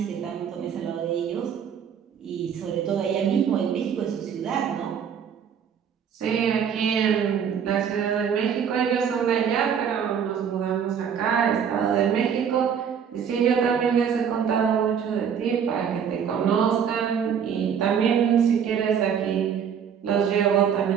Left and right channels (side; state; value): left; quieter; 7.7 dB